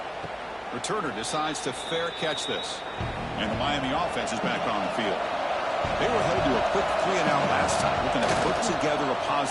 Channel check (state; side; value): identical; both; correlation 1.00